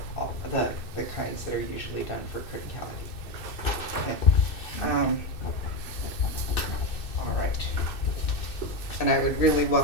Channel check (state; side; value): late; right; 2.6 ms